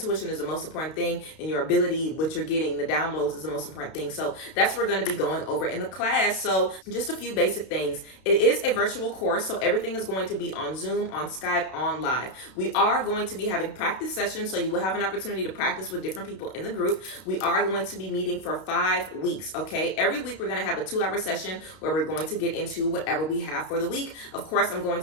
is the most important thing, and your ability, what you're getting, the downloads, is the most important thing. So that's what we're going to be going over in the class. So just a few basic things. It is a virtual course, so everything is going to be on Zoom, on Skype, on live. We are going to be having practice sessions, so you will have an opportunity to practice with different people in the group. We are going to be meeting for 5 weeks, okay? Every week we're going to have a 2-hour session where we're going to get into whatever we have for the week. Of course, I'm going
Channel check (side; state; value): right; late; 32 ms